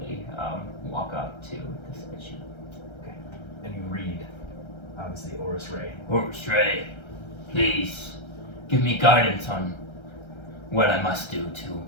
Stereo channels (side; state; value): right; late; 1.3 ms